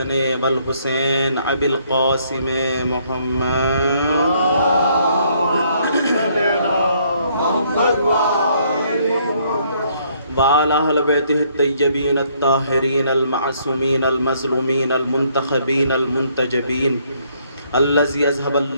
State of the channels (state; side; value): inverted; both; correlation -0.67